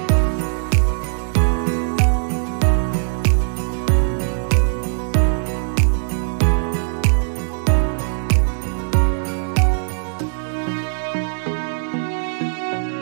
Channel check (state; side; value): silent; left; digital silence